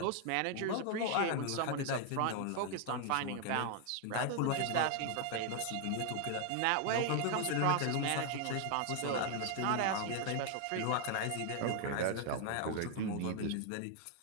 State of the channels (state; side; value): different; both; correlation 0.00